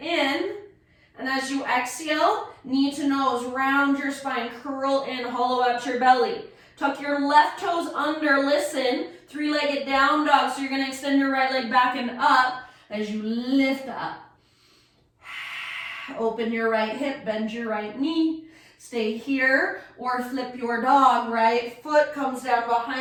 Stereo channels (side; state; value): both; identical; correlation 1.00